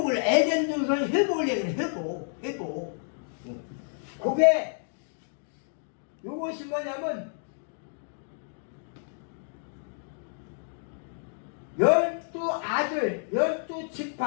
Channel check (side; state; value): right; silent; digital silence